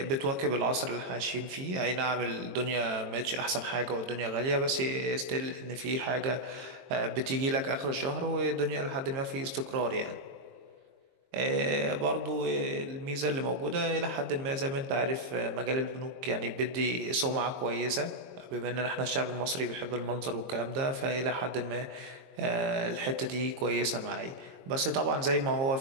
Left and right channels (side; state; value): left; late; 23 ms